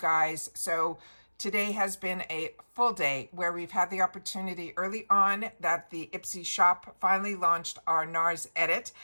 So today has been a full day where we've had the opportunity early on that the Ipsy shop finally launched our NARS edit.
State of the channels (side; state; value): both; inverted; correlation -1.00